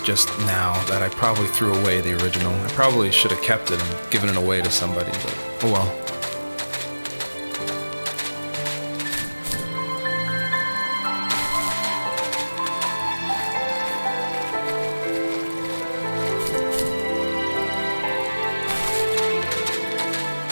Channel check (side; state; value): both; inverted; correlation -1.00